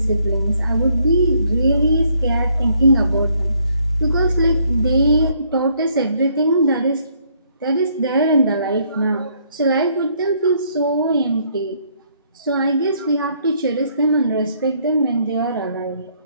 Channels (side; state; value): both; inverted; correlation -0.68